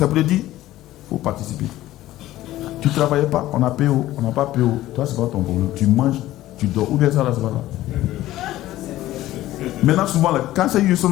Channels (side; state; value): right; quieter; 15.2 dB